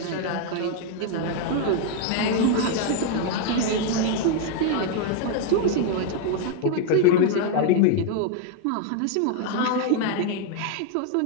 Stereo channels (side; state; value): both; different; correlation 0.01